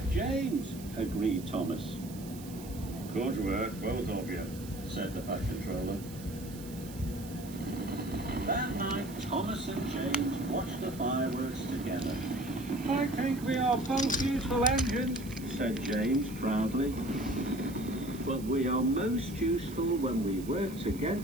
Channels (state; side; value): noise; right; hiss, 17 dB below the sound